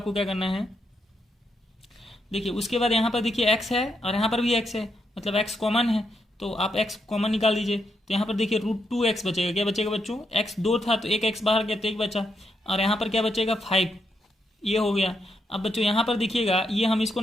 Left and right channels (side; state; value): both; normal; correlation 0.80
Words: क्या करना है, देखिए उसके बाद यहाँ पर देखिए x है और यहाँ पर भी x है, मतलब x कॉमन है, तो आप x कॉमन निकाल दीजिए। तो यहाँ पर देखिए √2x बचेगा। क्या बचेगा बच्चों, x 2 था तो एक x बाहर गया तो 1 बचा, और यहाँ पर क्या बचेगा 5, ये हो गया। अब बच्चों यहाँ पर देखिएगा, ये हम इसको